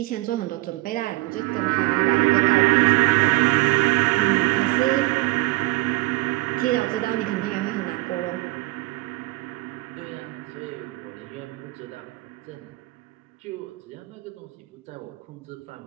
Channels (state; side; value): quieter; left; 21.0 dB